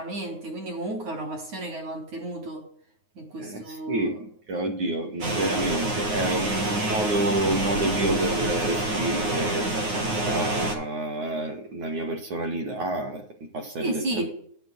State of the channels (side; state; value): left; late; 9.5 ms